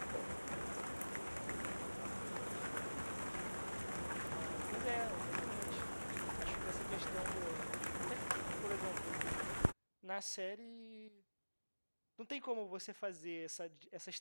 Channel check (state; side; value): inverted; both; correlation -1.00